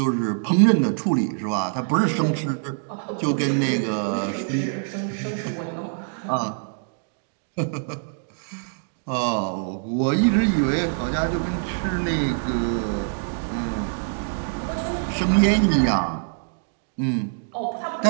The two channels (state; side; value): silent; left; digital silence